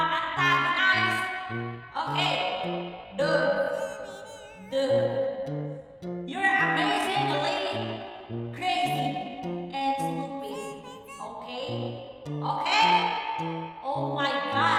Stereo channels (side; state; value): both; identical; correlation 1.00